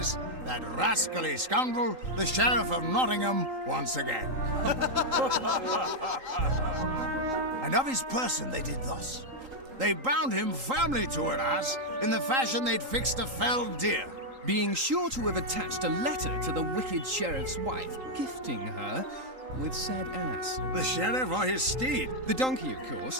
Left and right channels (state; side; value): late; left; 3.8 ms